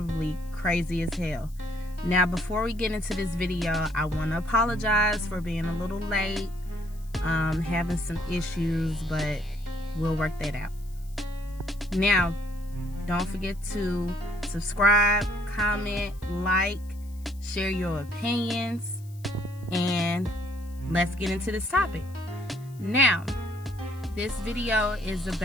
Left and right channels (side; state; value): left; noise; hiss, 26 dB below the sound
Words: crazy as hell. Now, before we get into this video, I want to apologize for being a little late, having some issues, but we'll work that out. Now, don't forget to subscribe, comment, like, share your opinions, and let's get into this topic. Now, this video is